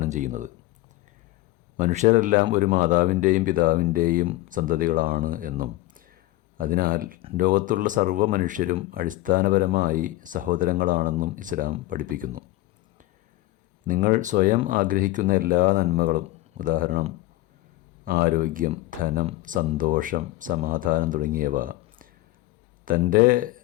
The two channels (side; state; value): right; quieter; 17.9 dB